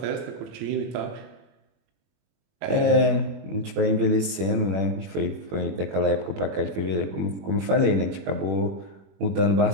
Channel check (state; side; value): late; left; 21 ms